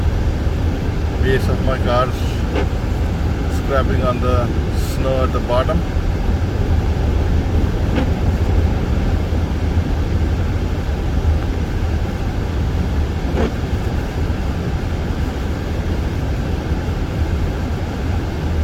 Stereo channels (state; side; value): identical; both; correlation 1.00